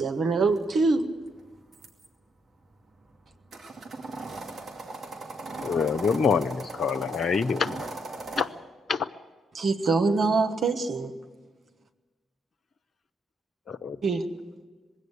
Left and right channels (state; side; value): normal; both; correlation 0.74